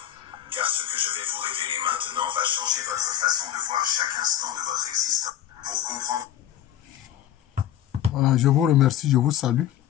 car ce que je vais vous révéler maintenant va changer votre façon de voir chaque instant de votre existence. Pour comprendre... Voilà, je vous remercie, je vous salue.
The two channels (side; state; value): right; quieter; 11.4 dB